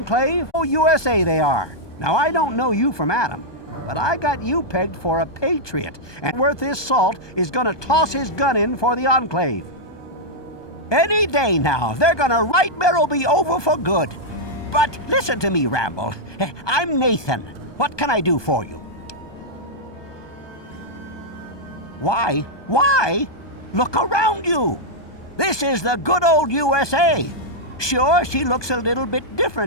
Oh, USA they are. Now, I don't know you from Adam, but I got you pegged for a patriot, and worth his salt is gonna toss his gun in for the Enclave. Any day now, they're gonna right Merrill be over for good. But listen to me, Ramble. I'm Nathan. What can I do for you? Why? Why? Look around you. This is the good old USA. Sure, she looks a little bit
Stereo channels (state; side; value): late; right; 1.2 ms